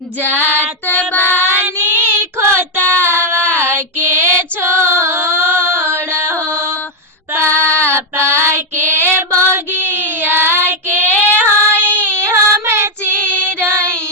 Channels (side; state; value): both; normal; correlation 0.02